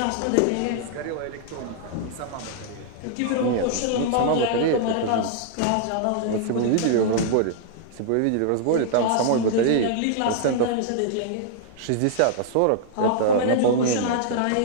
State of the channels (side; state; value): both; different; correlation -0.01